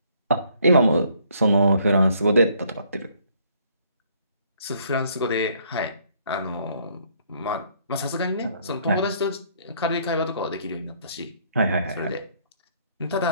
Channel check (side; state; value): both; inverted; correlation -0.65